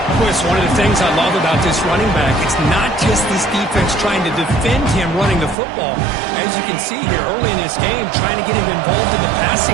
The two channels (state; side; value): drops out; left; at 5.6 s